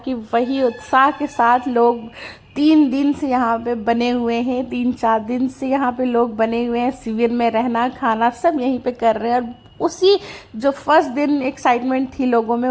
वही उत्साह के साथ लोग 3 दिन से यहाँ पे बने हुए हैं, 3-4 दिन से यहाँ पे लोग बने हुए हैं। शिविर में रहना खाना सब यहीं पे कर रहे हैं। और उसी जो फर्स्ट दिन एक्साइटमेंट थी लोगों में,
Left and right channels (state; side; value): identical; both; correlation 1.00